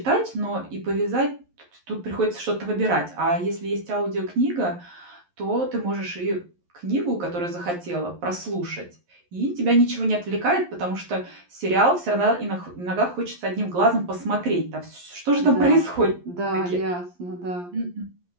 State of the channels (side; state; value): left; late; 11 ms